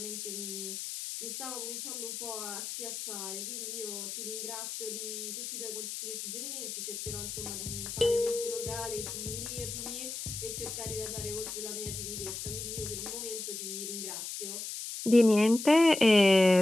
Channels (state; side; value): noise; left; hiss, 6 dB below the sound